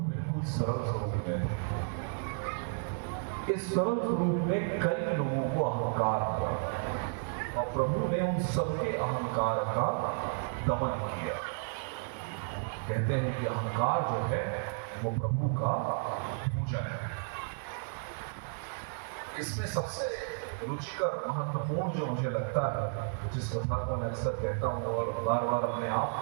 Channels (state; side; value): silent; left; 56 dB below the other